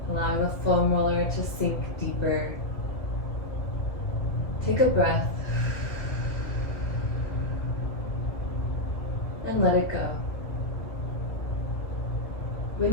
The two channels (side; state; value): right; late; 2.0 ms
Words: allowing the foam roller to sink deeper. Take a breath and let it go.